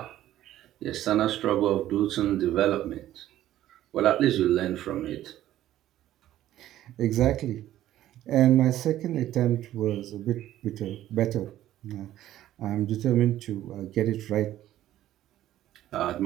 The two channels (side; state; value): left; quieter; 13.2 dB